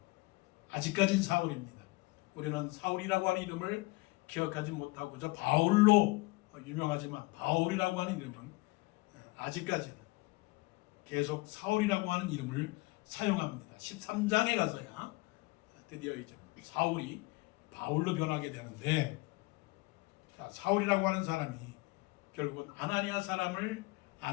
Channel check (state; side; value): quieter; right; 23.7 dB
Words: 아직까진 사울입니다. 우리는 사울이라고 하는 이름을 기억하지 못하고 저 바울로 유명하지만 바울이라고 하는 이름은 아직까지는 계속 사울이라고 하는 이름을 사용합니다. 13장에 가서야 드디어 이제 사울이 바울로 변하게 되는데 자, 사울이라고 하는 사람이 결국은